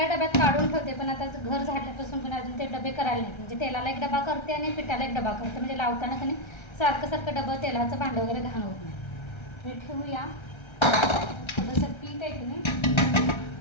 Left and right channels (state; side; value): late; right; 1.3 ms